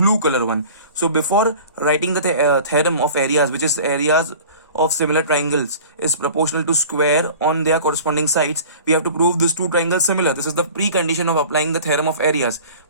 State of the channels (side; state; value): both; inverted; correlation -0.43